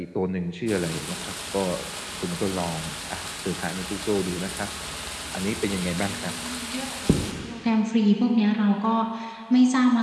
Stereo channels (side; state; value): both; identical; correlation 1.00